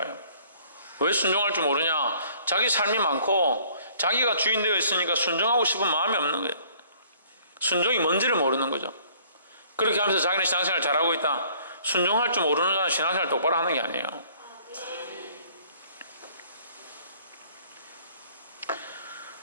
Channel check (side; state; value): both; inverted; correlation -0.57